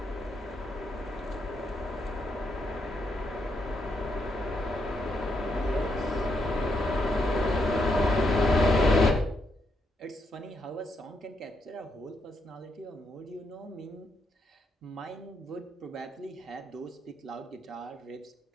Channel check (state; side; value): normal; both; correlation 0.77